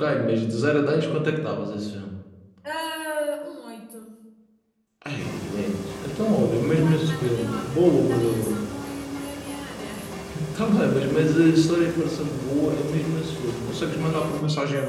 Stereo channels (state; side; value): identical; both; correlation 1.00